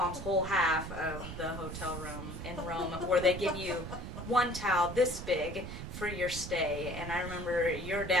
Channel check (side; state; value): right; noise; rumble, 8 dB below the sound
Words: whole half of the hotel room in Rome, where they give you one towel this big for your stay. And I remember your